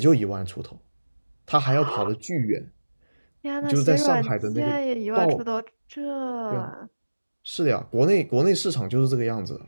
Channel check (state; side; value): inverted; both; correlation -1.00